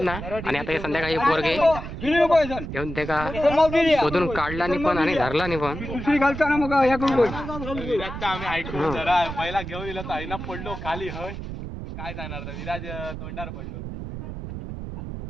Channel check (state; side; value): noise; right; rumble, 8 dB below the sound